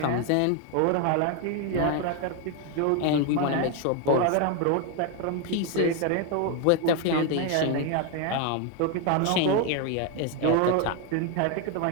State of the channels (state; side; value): different; both; correlation 0.01